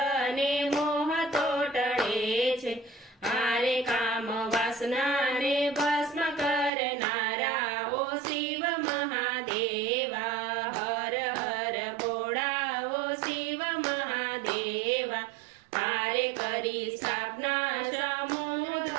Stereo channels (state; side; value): drops out; left; at 6.7 s